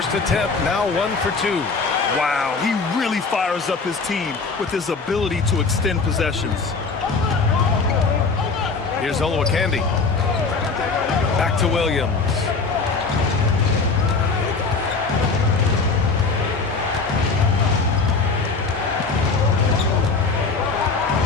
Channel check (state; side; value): quieter; right; 4.4 dB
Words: attempt, now 1 for 2. Wow, he really fires up his team with his ability to extend possessions. Here's Olowokandi. Back to Williams.